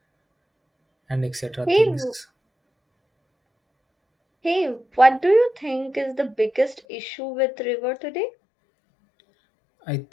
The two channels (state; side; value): drops out; right; at 6.8 s